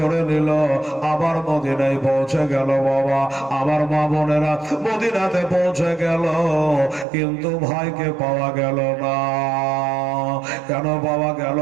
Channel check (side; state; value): left; drops out; at 7.1 s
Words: নিল, আবার মদিনায় পৌঁছে গেল। বাবা আমার মা বোনেরা মদিনাতে পৌঁছে গেল, কিন্তু ভাইকে পাওয়া গেল না। কেন পাওয়া গেল